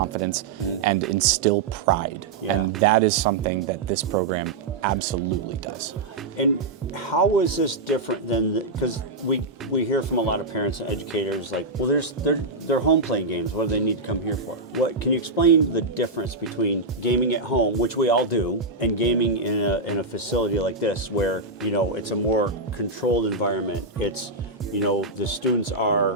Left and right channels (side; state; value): left; quieter; 3.3 dB